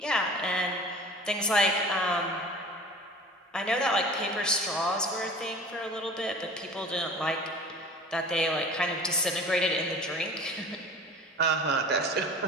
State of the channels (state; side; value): normal; both; correlation 0.41